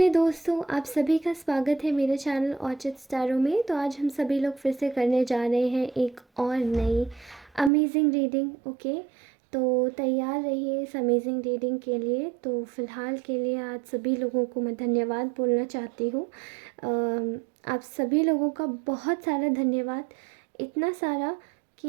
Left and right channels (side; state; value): left; drops out; at 7.7 s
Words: दोस्तों, आप सभी का स्वागत है मेरे चैनल ऑर्चिड स्टारों में। तो आज हम सभी लोग फिर से करने जा रहे हैं एक और नई अमेजिंग रीडिंग। ओके, तो तैयार रहिए इस अमेजिंग रीडिंग के लिए। तो फ़िलहाल के लिए आज सभी लोगों को मैं धन्यवाद बोलना चाहती हूँ। आप सभी लोगों का बहुत सारा धन्यवाद, इतना सारा